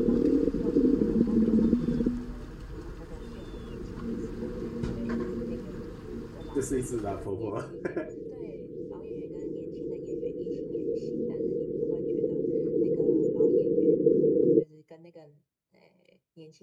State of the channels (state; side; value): identical; both; correlation 1.00